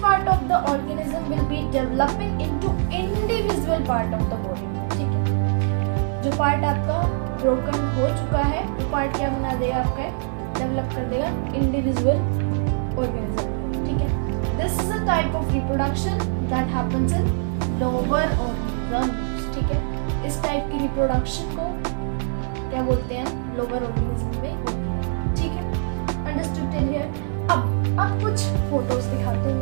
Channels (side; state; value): left; silent; 63 dB below the other